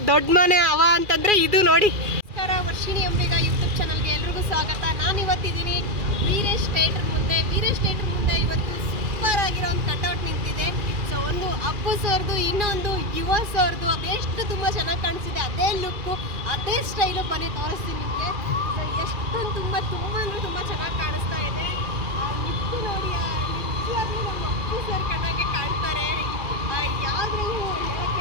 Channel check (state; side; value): late; left; 2.4 ms